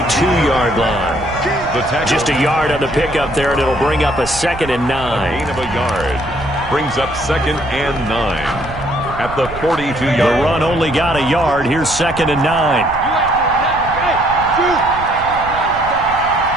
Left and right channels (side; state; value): right; noise; rumble, 13 dB below the sound